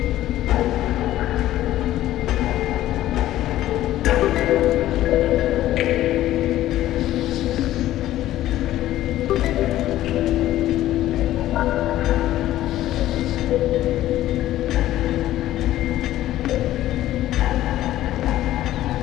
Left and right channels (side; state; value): right; quieter; 14.1 dB